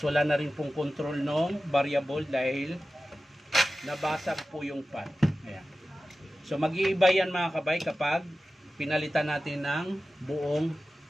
wala na rin pong control ng variable dahil nabasag po yung pan. Ayan. So mag-iiba yan mga kabay kapag pinalitan natin ng buong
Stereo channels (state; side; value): normal; both; correlation 0.95